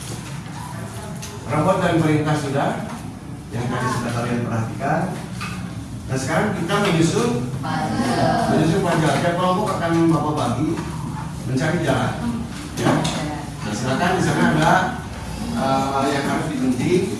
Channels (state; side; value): identical; both; correlation 1.00